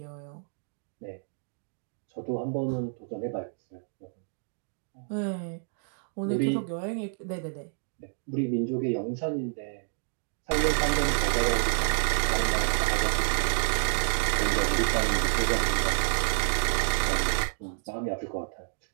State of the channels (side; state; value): left; silent; digital silence